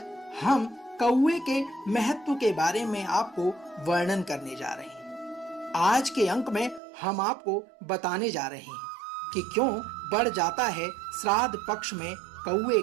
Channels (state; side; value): drops out; left; at 6.8 s